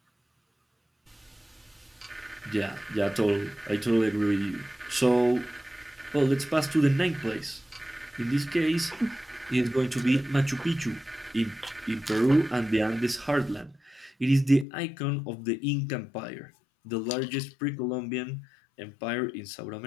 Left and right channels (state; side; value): drops out; right; at 14.7 s